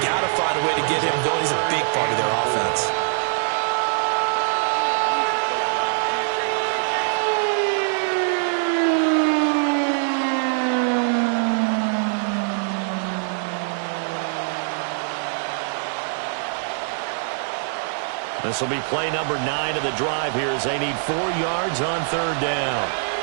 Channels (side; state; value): left; silent; digital silence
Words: to find a way to get him going. He's a big part of their offense. This will be play number 9 of the drive here as they need 4 yards on 3rd down.